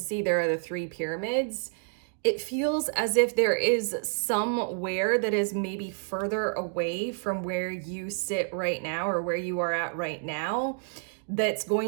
there are the three pyramids. It feels as if there is somewhere that is maybe further away from where you sit right now, or where you are at right now, that's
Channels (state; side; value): silent; left; digital silence